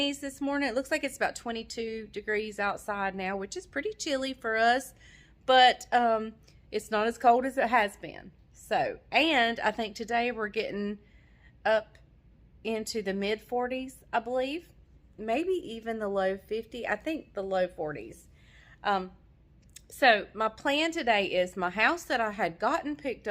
this morning. It looks like it's about 22 degrees outside now, which is pretty chilly for us. But it's not as cold as it has been. So, and I think today we're getting up into the mid 40s, I believe, maybe even the low 50. I think the low 40s. So my plan today is my house that I had gotten picked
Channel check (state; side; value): identical; both; correlation 1.00